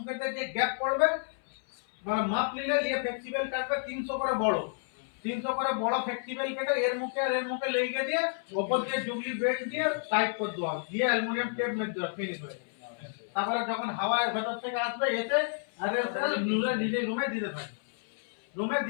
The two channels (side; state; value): right; silent; 57 dB below the other